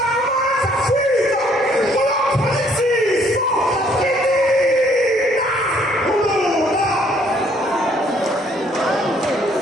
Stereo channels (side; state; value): both; normal; correlation 0.64